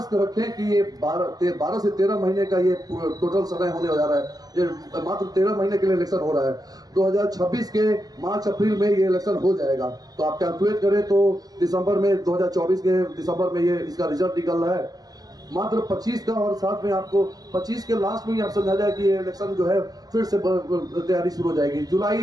रखें कि ये 12 से 13 महीने का ये टोटल समय होने जा रहा है। ये मात्र 13 महीने के लिए इलेक्शन हो रहा है। 2026 के मार्च अप्रैल में ये इलेक्शन हो जाएगा। तो आप कैलकुलेट करें तो दिसंबर में, 2024 के दिसंबर में ये इसका रिजल्ट निकल रहा है। मात्र 25 का, और साथ में आपको 25 के लास्ट में ही आप समझा जाए कि ये इलेक्शन जो है फिर से तैयारी शुरू हो जाएगी।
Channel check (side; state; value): left; late; 0.18 ms